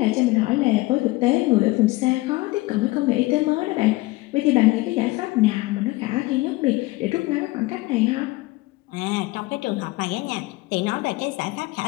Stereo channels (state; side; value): quieter; right; 20.8 dB